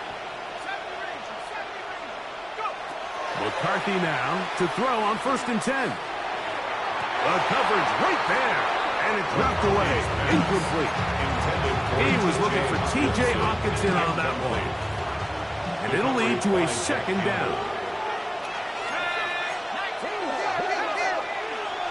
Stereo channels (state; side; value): identical; both; correlation 1.00